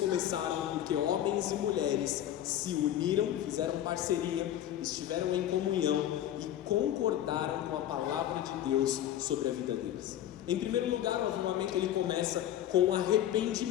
porque homens e mulheres se uniram, fizeram parceria, estiveram em comunhão e concordaram com a palavra de Deus sobre a vida deles. Em primeiro lugar, o avivamento ele começa com o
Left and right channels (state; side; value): quieter; right; 11.8 dB